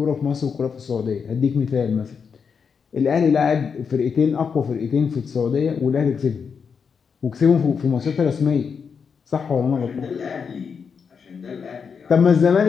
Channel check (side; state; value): right; quieter; 6.2 dB